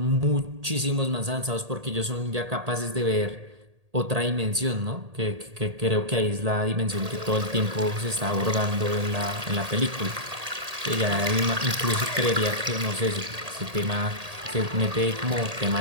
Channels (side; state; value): left; late; 1.8 ms